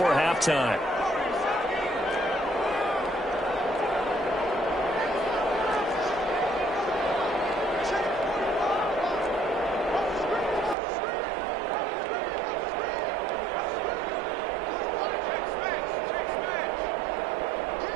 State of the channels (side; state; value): left; drops out; at 10.8 s